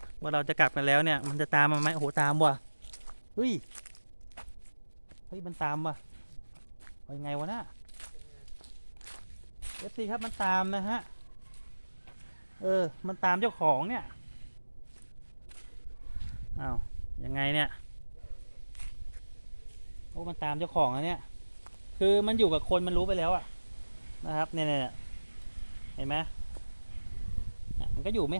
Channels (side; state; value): both; inverted; correlation -1.00